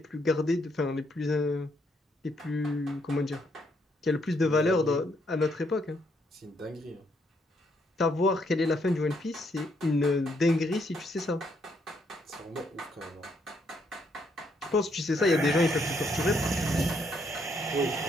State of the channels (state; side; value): normal; both; correlation 0.73